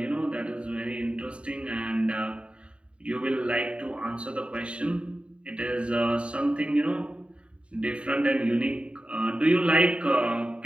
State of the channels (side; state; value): left; late; 0.058 ms